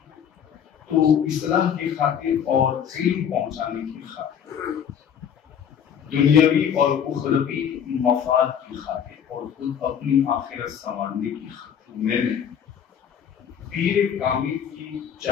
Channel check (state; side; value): quieter; right; 8.3 dB